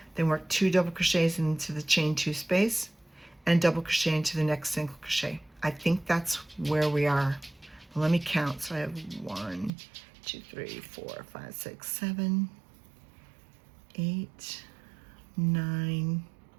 Then work 2 double crochets into the chain 2 space and double crochet into the next single crochet. I think that's where we are. Well, let me count. So I have 1, 2, 3, 4, 5, 6, 7, 8, 9,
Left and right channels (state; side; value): drops out; left; at 9.7 s